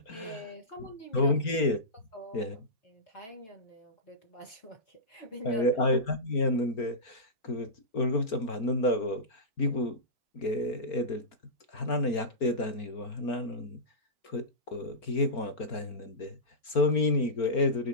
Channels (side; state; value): right; late; 4.4 ms